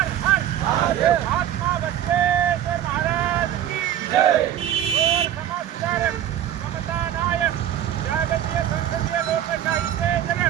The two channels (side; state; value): left; quieter; 11.0 dB